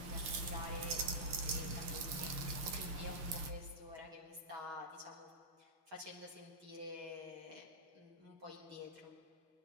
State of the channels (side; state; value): left; late; 6.5 ms